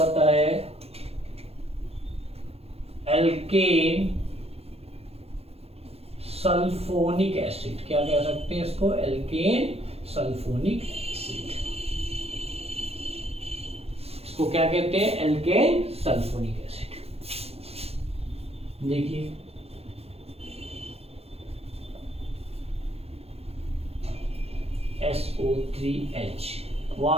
है? Alkane sulphonic acid. क्या कह सकते हैं इसको? Alkane sulphonic acid. इसको क्या कहते हैं? Alkane sulphonic acid. देखिए SO3H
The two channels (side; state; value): left; late; 0.29 ms